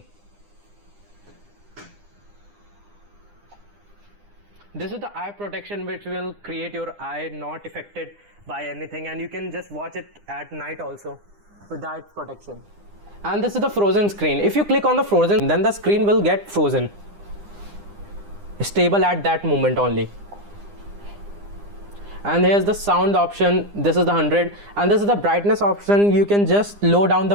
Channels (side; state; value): left; late; 9.9 ms